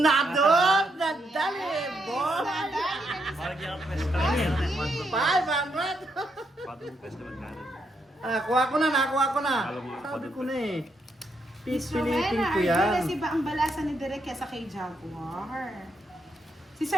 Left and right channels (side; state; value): both; normal; correlation 0.78